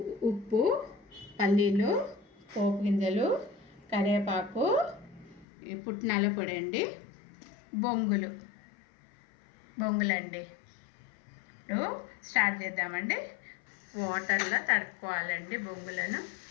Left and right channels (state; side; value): drops out; right; at 5.5 s